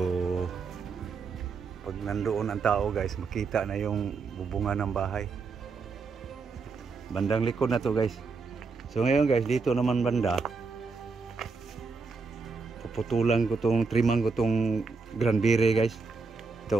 pag nandoon ang tao guys, makita na yung bubungan ng bahay. Bandang likod na to guys. So ngayon guys, dito naman banda, puputulan ko tong, triman ko tong granberry guys.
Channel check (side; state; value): left; quieter; 4.6 dB